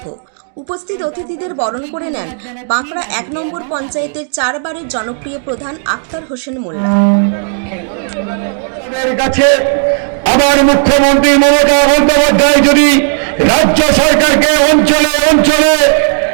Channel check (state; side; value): silent; left; digital silence